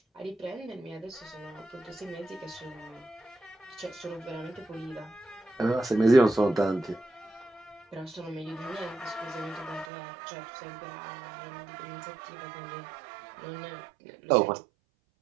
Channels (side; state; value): left; drops out; at 9.9 s